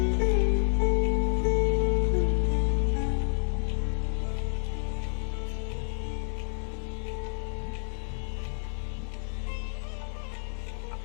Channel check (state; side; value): silent; right; 58 dB below the other